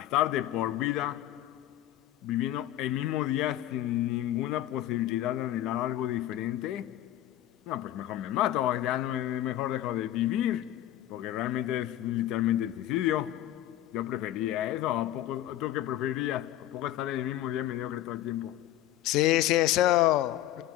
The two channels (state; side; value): quieter; right; 13.4 dB